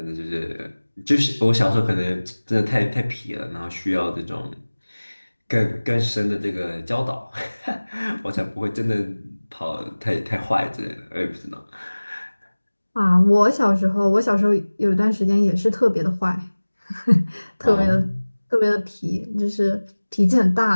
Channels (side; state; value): both; inverted; correlation -1.00